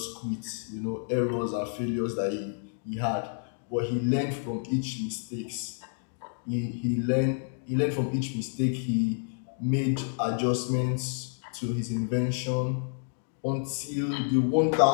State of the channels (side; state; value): right; silent; digital silence